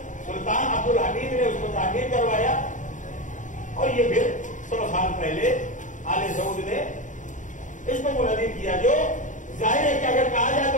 سلطان عبد الحمید نے اس کو تعمیر کروایا، اور یہ پھر 100 سال پہلے آل سعود نے اس کو منہدم کیا، جو ظاہر ہے کہ اگر کہا جائے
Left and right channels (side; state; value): right; late; 0.37 ms